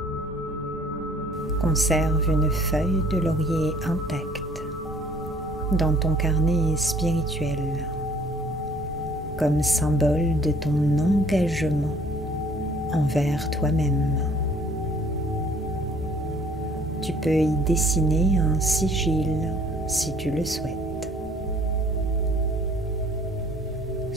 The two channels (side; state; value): both; normal; correlation 0.56